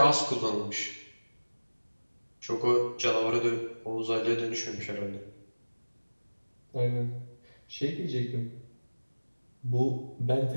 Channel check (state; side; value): inverted; both; correlation -1.00